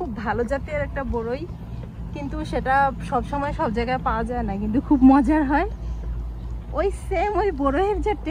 ভালো জাতের একটা বড়ই, কিন্তু সেটা সব সময় সব জায়গায় পাওয়া যায় না, কিন্তু খুব মজার হয়। ওই সেম ওই বড়ইয়ের যে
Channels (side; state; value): both; identical; correlation 1.00